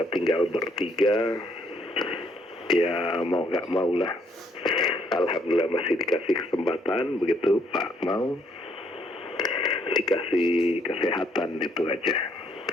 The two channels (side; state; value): both; normal; correlation 0.69